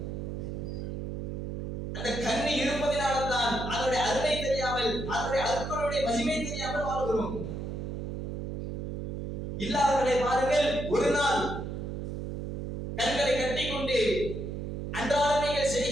அந்த கண் இருப்பதினால்தான் அதனுடைய அருமை தெரியாமல், அதனுடைய அற்புடைய மகிமை தெரியாமல் வாழ்கிறோம். இல்லாதவர்களை பாருங்கள், ஒரு நாள் கண்களை கட்டிக்கொண்டு அன்றாடம் நீங்கள்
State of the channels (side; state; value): right; noise; hum, 5 dB below the sound